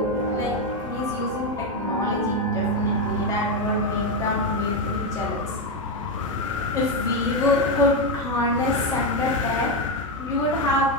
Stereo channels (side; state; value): both; normal; correlation 0.08